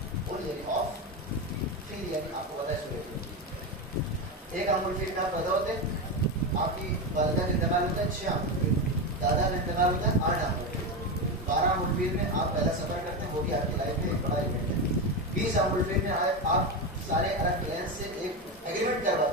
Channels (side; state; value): both; normal; correlation 0.15